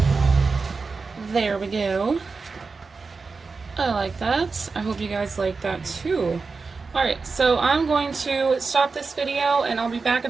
There we go. I like that. I hope you guys like that too. Alright, so I'm going to stop this video and I'll be back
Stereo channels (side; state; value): left; quieter; 4.4 dB